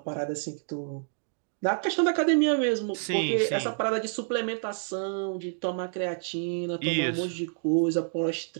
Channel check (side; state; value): left; silent; digital silence